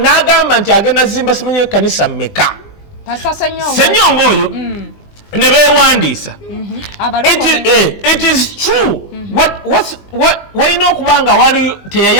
nti agenda zimba simanyi ekkanisa mmeka Ssenyonga oyo ne beewandiisa it is true walina okuba nga wali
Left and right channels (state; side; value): late; right; 20 ms